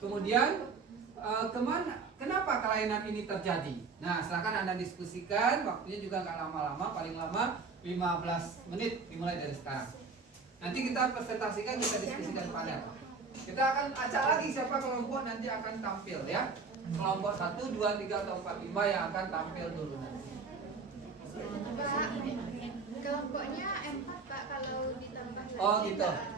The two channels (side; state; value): left; quieter; 4.7 dB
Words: kemudian kenapa kelainan ini terjadi. Nah, silakan Anda diskusikan, waktunya juga nggak lama-lama, paling lama 15 menit dimulai dari sekarang. Nanti kita presentasikan, kita diskusikan panel. Kita akan acak lagi siapa kelompok nanti akan tampil ya. Kelompok 1, 2, 3, atau 4, 5 yang akan tampil dulu nanti. Pak, kelompoknya 4 Pak, kalau ditambah lagi. Oh gitu,